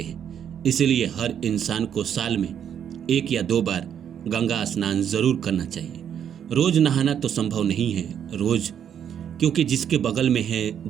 हैं। इसलिए हर इंसान को साल में 1 या 2 बार गंगा स्नान जरूर करना चाहिए। रोज नहाना तो संभव नहीं है रोज, क्योंकि जिसके बगल में है,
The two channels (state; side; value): quieter; left; 8.9 dB